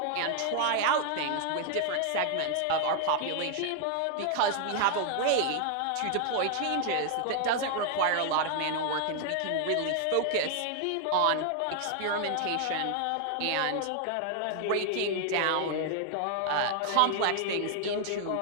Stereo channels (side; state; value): both; different; correlation 0.00